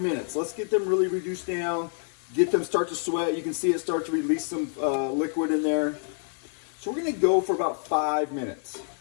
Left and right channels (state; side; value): silent; right; 60 dB below the other